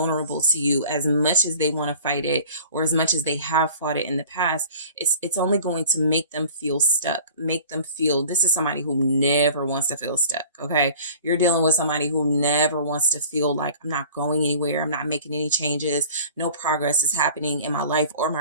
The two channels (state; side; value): inverted; both; correlation -0.45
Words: to you as much as they want to fight it, or as much as they have fought it in the past. It's only going to make them feel stuck, make them feel, this is somebody who never wants to feel stuck, okay? You're dealing with somebody who never wants to feel like, I'm not going anywhere, I'm not making any changes, no progress is happening in my life or my